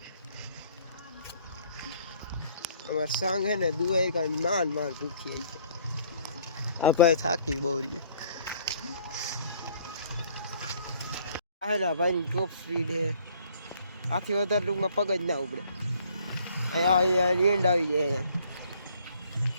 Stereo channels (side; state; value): both; inverted; correlation -0.59